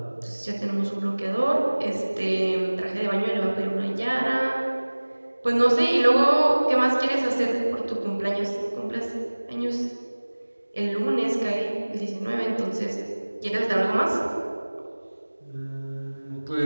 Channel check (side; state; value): both; inverted; correlation -1.00